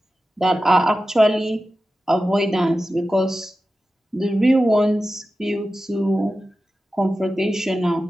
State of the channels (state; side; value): normal; both; correlation 0.93